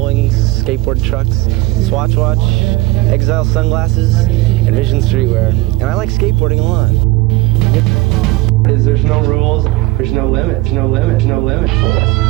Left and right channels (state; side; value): quieter; left; 20.3 dB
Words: Skateboard Trucks, Swatch Watch, Exile Sunglasses, and Vision Streetwear. And I like skateboarding a lot. There's no rules, there's no limits, no limits, no limits. He's